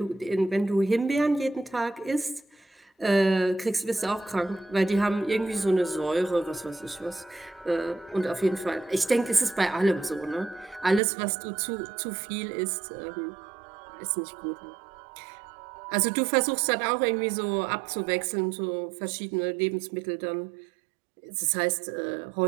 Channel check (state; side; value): drops out; left; at 11.0 s